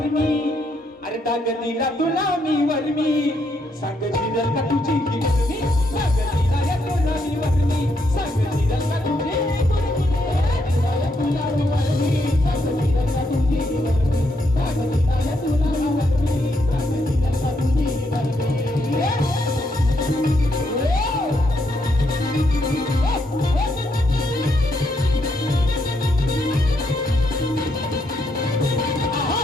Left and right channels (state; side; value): normal; both; correlation 0.77